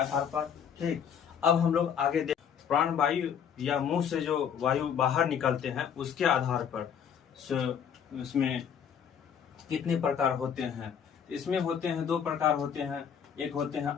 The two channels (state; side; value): quieter; right; 7.9 dB